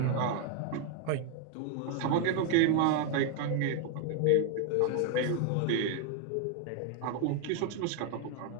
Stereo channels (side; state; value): both; different; correlation 0.01